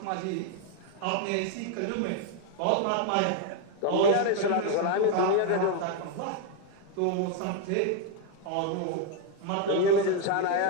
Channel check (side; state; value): both; different; correlation 0.01